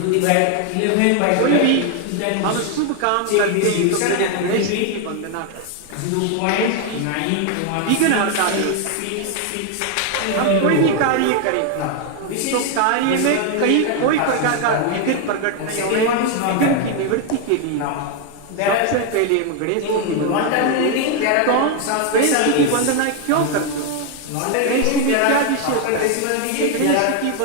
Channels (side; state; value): both; different; correlation 0.01